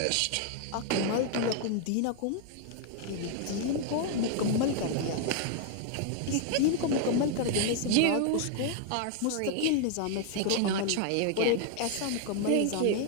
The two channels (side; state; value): both; different; correlation 0.00